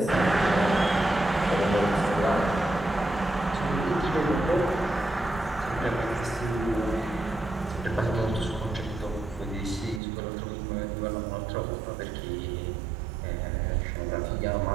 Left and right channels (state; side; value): drops out; left; at 10.0 s